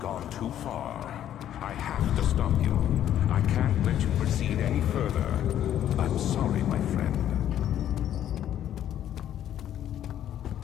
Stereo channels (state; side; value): quieter; right; 11.0 dB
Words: too far. I have to stop you. I can't let you proceed any further. I'm sorry, my friend.